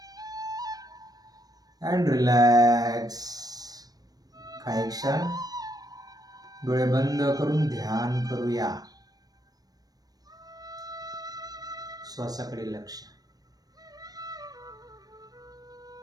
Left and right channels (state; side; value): late; left; 0.19 ms